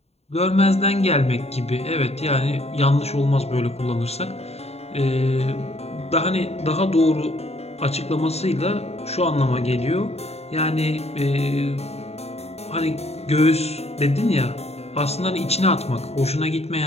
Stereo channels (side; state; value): right; late; 0.30 ms